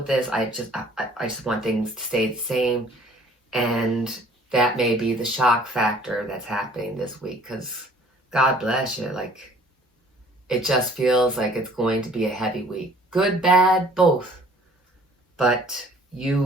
this. I just want things to stay the same. And that may be the shock factor that's happening this week, because God bless you. Like, it just feels like it's going to be a heavy week. Good, bad, both. But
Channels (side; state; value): both; normal; correlation 0.55